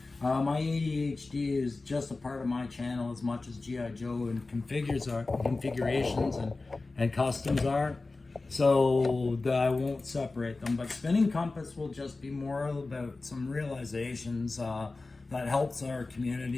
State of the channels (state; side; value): quieter; right; 3.5 dB